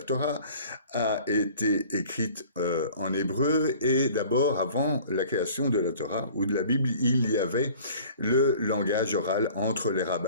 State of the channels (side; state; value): both; inverted; correlation -0.48